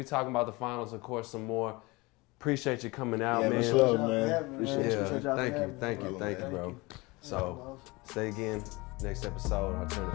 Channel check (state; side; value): quieter; right; 24.0 dB